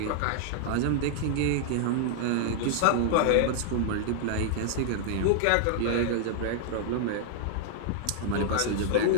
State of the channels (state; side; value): different; both; correlation -0.01